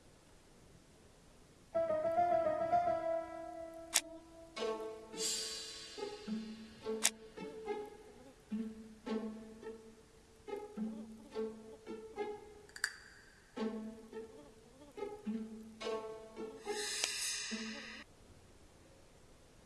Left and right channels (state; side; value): identical; both; correlation 1.00